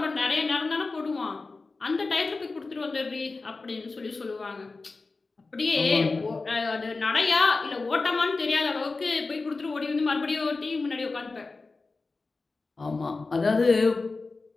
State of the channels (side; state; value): right; quieter; 3.8 dB